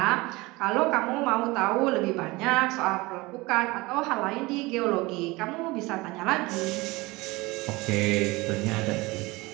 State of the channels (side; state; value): left; quieter; 22.4 dB